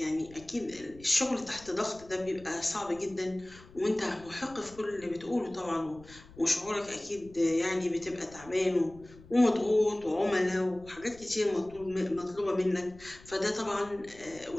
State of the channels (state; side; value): noise; left; rumble, 21 dB below the sound